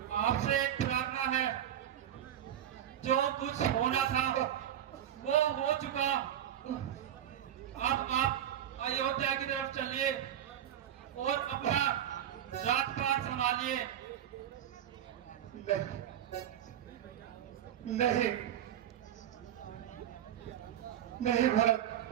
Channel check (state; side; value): quieter; left; 10.7 dB